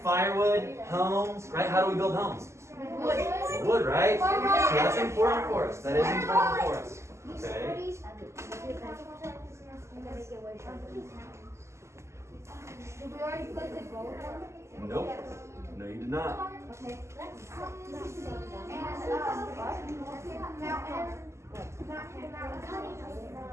Firewood, homes, right? How do we build homes? Wood, right? So that's important for us. That is important for us. Okay. Did we already put the gold on? Nope. No, you did not. Okay.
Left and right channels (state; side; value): late; left; 0.13 ms